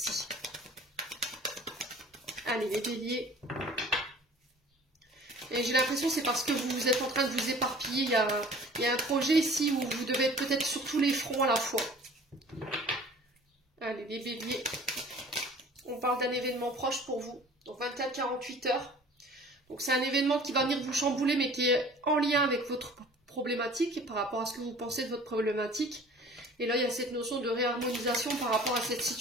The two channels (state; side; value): normal; both; correlation 0.47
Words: Allez, les béliers. Et j'ai l'impression que c'est parce que vous êtes en train de vous éparpiller. Il y a un projet ici où vous devez être peut-être sur tous les fronts à la fois. Allez, les béliers. On parle d'un événement proche pour vous. Donc 24-48 heures. Donc c'est un événement qui va venir vous chambouler, mais qui est en lien avec votre problématique, par rapport à ce que vous pensez de votre problématique. Et là, il y a cette notion de réharmonisation par rapport à cette